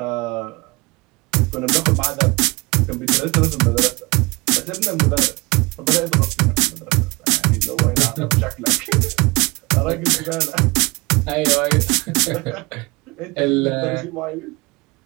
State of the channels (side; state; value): left; quieter; 24.9 dB